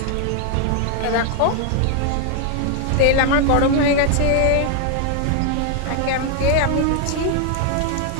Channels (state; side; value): different; both; correlation 0.00